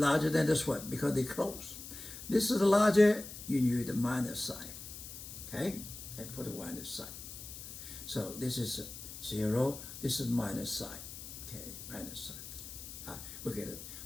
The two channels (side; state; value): left; noise; hiss, 11 dB below the sound